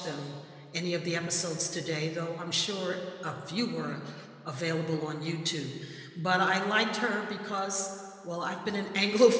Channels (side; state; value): both; identical; correlation 1.00